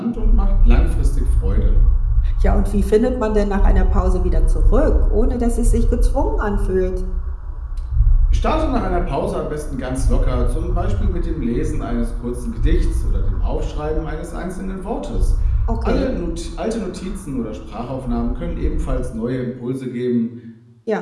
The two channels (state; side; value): identical; both; correlation 1.00